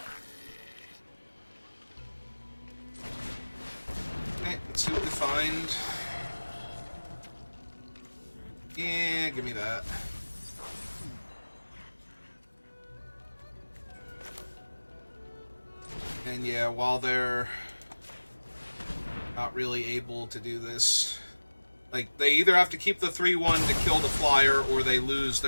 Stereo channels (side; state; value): both; inverted; correlation -1.00